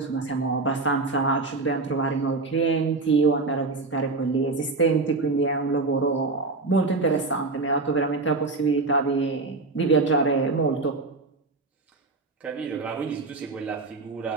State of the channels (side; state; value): left; quieter; 3.6 dB